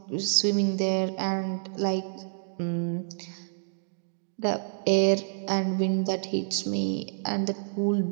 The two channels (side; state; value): left; silent; digital silence